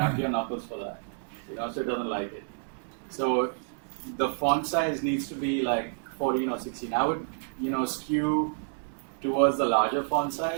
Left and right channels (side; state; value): left; silent; digital silence